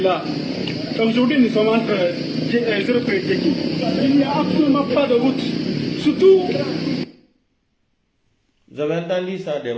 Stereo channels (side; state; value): both; identical; correlation 1.00